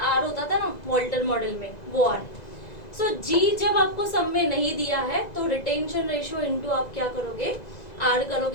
R होता था ना वॉल्टर मॉडल में, वो R. सो G जब आपको सम में नहीं दिया है तो रिटेंशन रेशियो इनटू आप क्या करोगे? R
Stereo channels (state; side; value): late; right; 2.0 ms